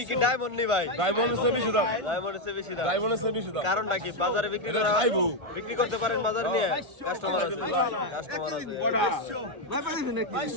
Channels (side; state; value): left; late; 1.5 ms